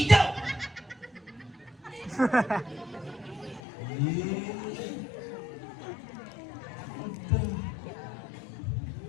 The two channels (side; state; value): right; drops out; at 3.6 s